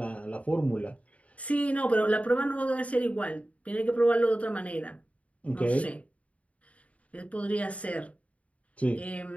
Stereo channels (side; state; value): right; late; 0.066 ms